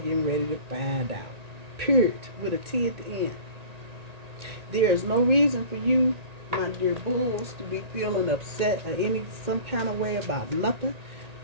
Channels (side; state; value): left; late; 1.9 ms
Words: ready to find out. Period. With a T at the end. There is no reason for you, my dear bulls, to be feeling upset or some kind of way about nothing.